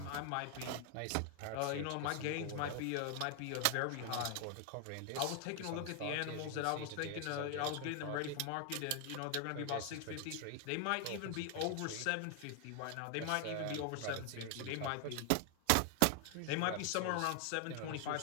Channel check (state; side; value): different; both; correlation 0.00